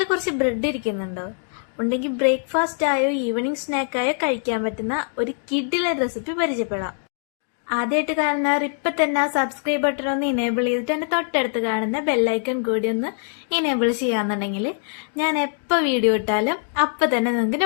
കുറച്ച് ബ്രെഡ് ഇരിക്കുന്നുണ്ടോ? ഉണ്ടെങ്കിൽ ബ്രേക്ക്ഫാസ്റ്റ് ആയോ ഈവനിങ് സ്നാക്കായോ കഴിക്കാൻ പറ്റുന്ന ഒരു കിഡിലെ റെസിപ്പി പരിചയപ്പെടാം. ആദ്യമായിട്ട് കാണുന്നവർ ഇപ്പം തന്നെ ആ സബ്സ്ക്രൈബ് ബട്ടൺ ഒന്ന് ഇനേബിൾ ചെയ്തിട്ട് എൻ്റെ തൊട്ടടുത്ത് കാണുന്ന ബെല്ലൈക്കൺ കൂടി ഒന്ന് ഇനേബിൾ ചെയ്യാന്നുണ്ടെങ്കിൽ ഞാൻ എപ്പോൾ വീഡിയോ ഇട്ടാലും അപ്പം തന്നെ നിങ്ങൾക്ക്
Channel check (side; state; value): right; silent; 61 dB below the other